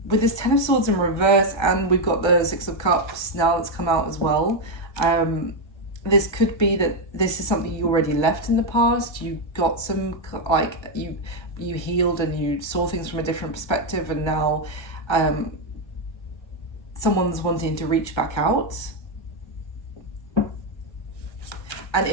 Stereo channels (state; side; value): late; right; 1.4 ms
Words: this 10 of Swords in reverse, and we've got the 6 of Cups now that's come out as well, this could be that this is something you already left in the past. You got some, like, you healed and you saw things from a different perspective, and now someone's wanting to reach back out. And